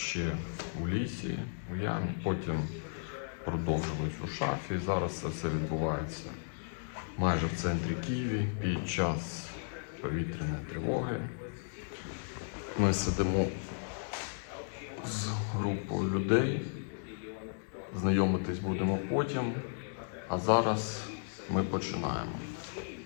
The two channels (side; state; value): right; silent; digital silence